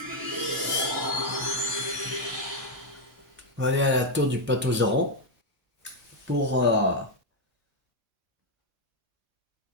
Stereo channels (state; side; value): normal; both; correlation 0.01